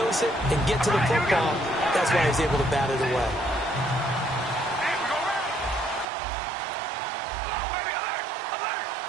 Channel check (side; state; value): left; drops out; at 6.1 s